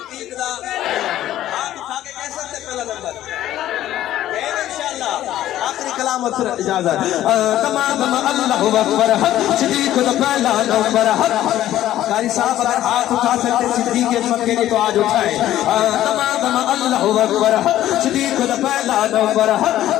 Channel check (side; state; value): right; quieter; 13.1 dB